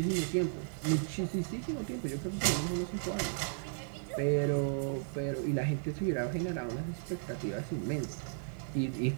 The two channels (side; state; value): left; silent; digital silence